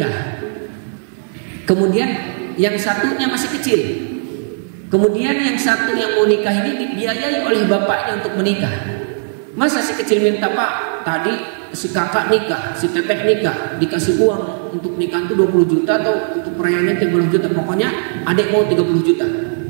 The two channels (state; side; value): silent; left; digital silence